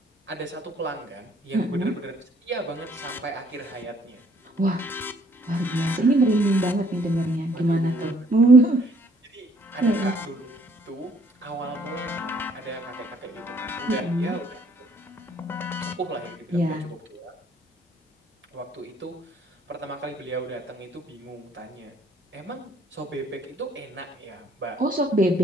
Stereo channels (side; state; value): both; normal; correlation 0.62